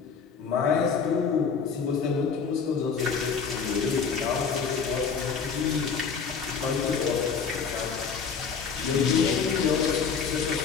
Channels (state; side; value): quieter; right; 5.8 dB